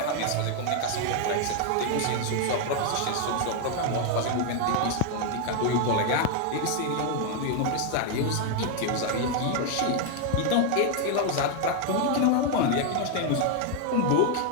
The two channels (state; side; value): different; both; correlation 0.01